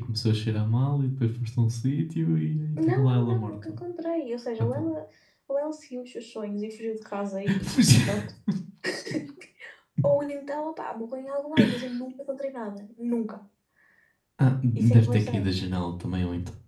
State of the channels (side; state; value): both; identical; correlation 1.00